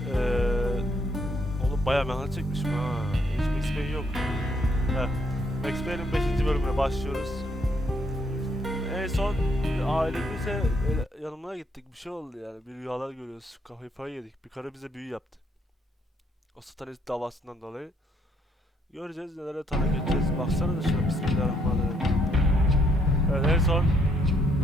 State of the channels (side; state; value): both; normal; correlation 0.71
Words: Oğlum bayağı merak çekmişim ha. Hiç Max Payne yok. Max Payne'in 5. bölümüne başlıyoruz. En son ailemizle yanımına gittik, bir şey oldu yani. Bir rüyalar görüyoruz, kafayı yedik. Bir karı bize büyü yaptı. O satanist davasından dolayı. Göreceğiz, nelere tanık edeceğiz. Baksana da şuna, bismillahirrahmanirrahim. Evet, en son